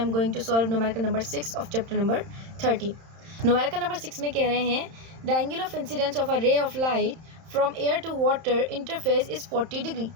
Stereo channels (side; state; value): left; late; 31 ms